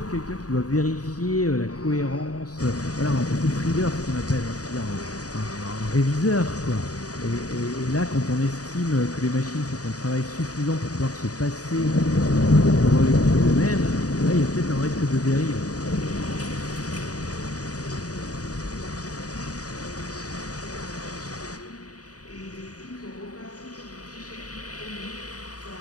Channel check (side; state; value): right; late; 0.67 ms